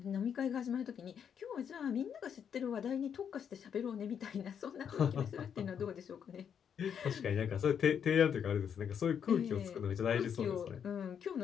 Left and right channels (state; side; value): quieter; right; 7.9 dB